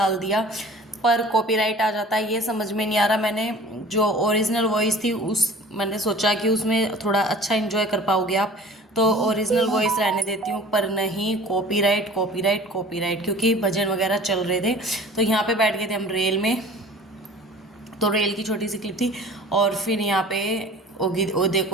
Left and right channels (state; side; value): normal; both; correlation 0.44